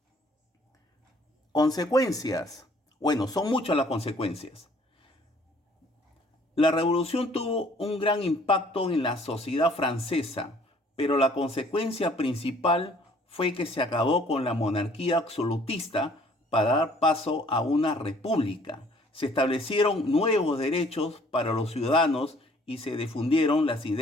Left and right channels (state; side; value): normal; both; correlation 0.58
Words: Consecuencias. Bueno, son muchas las consecuencias. La revolución tuvo un gran impacto en la sociedad francesa, pero la consecuencia principal fue que se acabó con la monarquía absolutista para dar paso a una república. Se establecieron nuevos derechos para los ciudadanos y se difundieron las